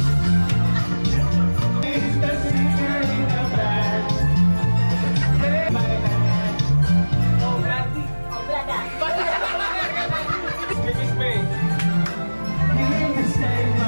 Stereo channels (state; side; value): inverted; both; correlation -1.00